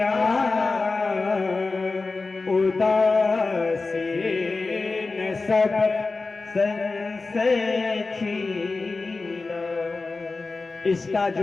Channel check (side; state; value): right; quieter; 3.8 dB